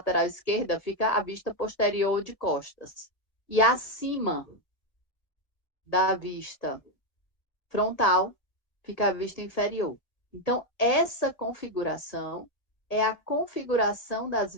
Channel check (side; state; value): right; late; 1.7 ms